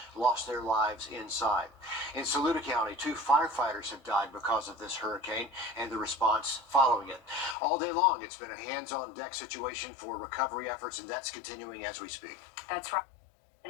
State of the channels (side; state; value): right; drops out; at 7.6 s